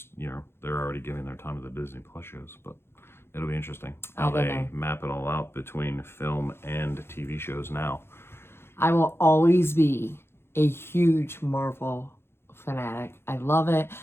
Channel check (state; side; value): late; right; 0.12 ms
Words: already giving their time to the Disney Plus shows. But it'll be interesting how they map it all out between film and TV shows now. I will always be a huge Marvel fanatic. I love it.